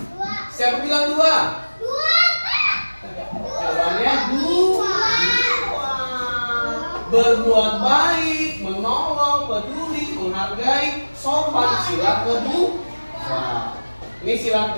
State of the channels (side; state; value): both; inverted; correlation -1.00